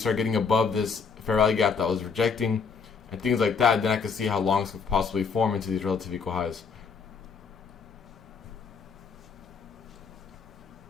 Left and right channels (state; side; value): quieter; right; 5.5 dB